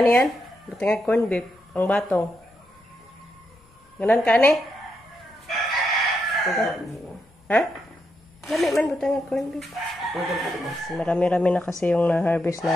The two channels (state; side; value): normal; both; correlation 0.82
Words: niyan? Buti nga corn beef. Ang batong. Ganon ka ni? Ha? Lami man buti nga corn beef. Marami-rami na kasi yung na-harvest